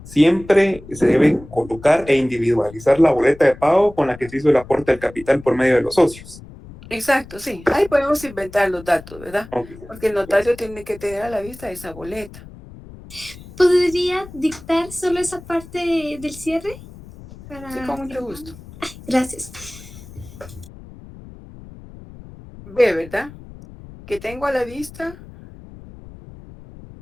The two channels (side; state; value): left; noise; rumble, 18 dB below the sound